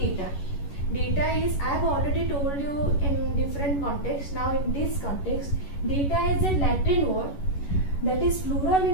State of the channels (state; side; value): late; right; 11 ms